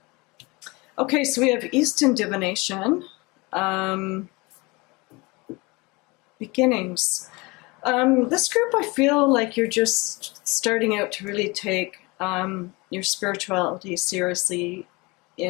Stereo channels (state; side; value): quieter; right; 25.2 dB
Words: Okay, so we have Eastern divination. Beginnings. This group, I feel like you're just starting out to really take your spirituality seriously